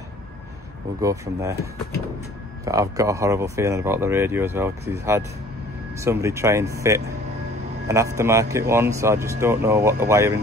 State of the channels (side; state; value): both; normal; correlation 0.51